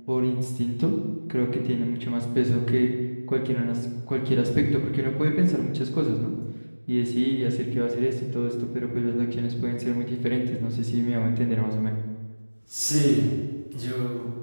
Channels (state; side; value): inverted; both; correlation -1.00